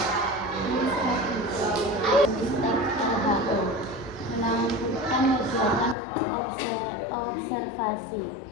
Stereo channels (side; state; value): right; drops out; at 6.0 s